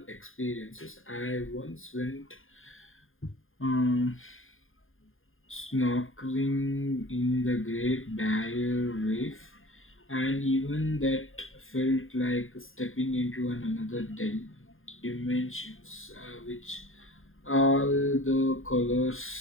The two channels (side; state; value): right; late; 0.59 ms